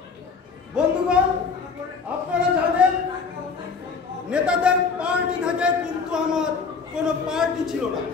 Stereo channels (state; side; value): quieter; right; 5.1 dB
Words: বন্ধুগণ, আপনারা জানেন নেতাদের পার্টি থাকে, কিন্তু আমার কোনো পার্টি ছিল না।